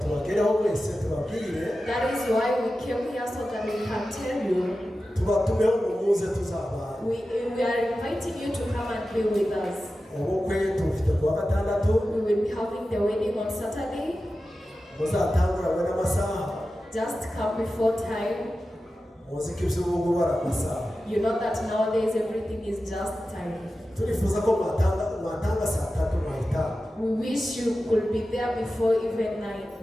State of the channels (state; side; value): normal; both; correlation 0.93